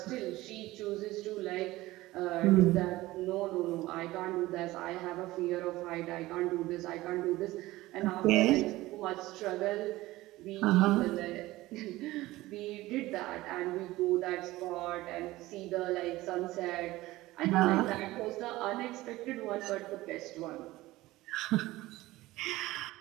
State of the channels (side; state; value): left; quieter; 18.1 dB